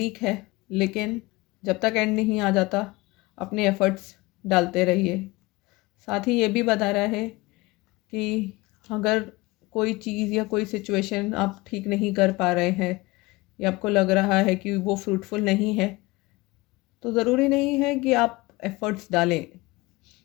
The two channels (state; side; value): quieter; right; 22.1 dB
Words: है, लेकिन जब तक एंड नहीं आ जाता अपने एफ़र्ट्स डालते रहिए। साथ ही ये भी बता रहा है कि अगर कोई चीज़ या कोई सिचुएशन आप ठीक नहीं कर पा रहे हैं या आपको लग रहा है कि वो फ्रूटफुल नहीं है, तो ज़रूरी नहीं है कि आप एफ़र्ट्स डालें।